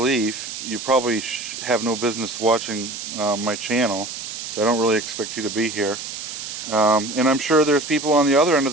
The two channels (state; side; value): noise; right; hiss, 8 dB below the sound